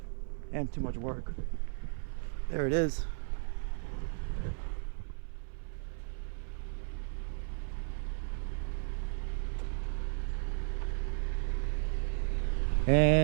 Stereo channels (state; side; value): silent; left; 55 dB below the other